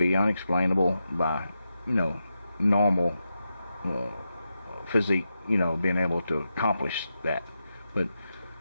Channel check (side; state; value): both; inverted; correlation -0.88